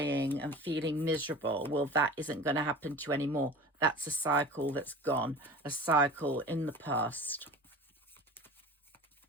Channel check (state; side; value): normal; both; correlation 0.38